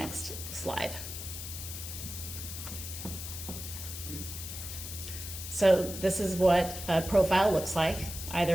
slide. So this is what a profile looks like,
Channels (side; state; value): left; noise; hiss, 8 dB below the sound